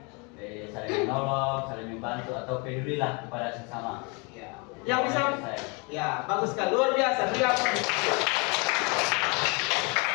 saling menolong, saling membantu atau pedulilah kepada sesama. Ya. Yang bisa, ya bagus sekali, luar biasa.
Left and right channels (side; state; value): right; quieter; 31.3 dB